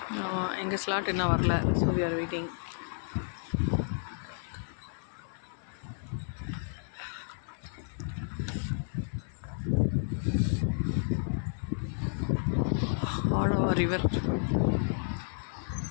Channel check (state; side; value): silent; right; 57 dB below the other